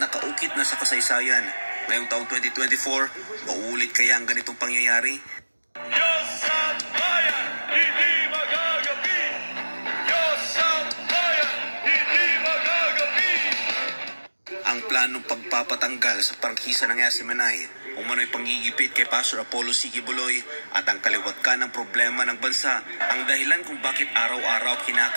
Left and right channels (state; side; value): inverted; both; correlation -1.00